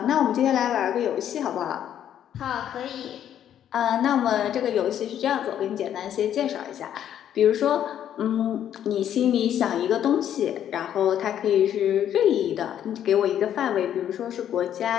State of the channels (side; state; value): right; quieter; 10.2 dB